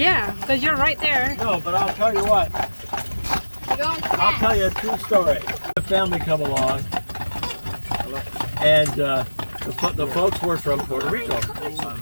because you're right there. No, but I'll tell you what. You're going I'll fast. tell you a true story. The family come along, and the folks were from Puerto Rico,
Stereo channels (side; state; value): both; inverted; correlation -1.00